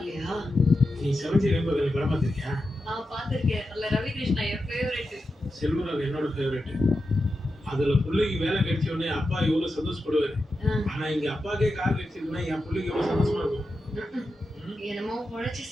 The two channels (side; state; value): both; normal; correlation 0.89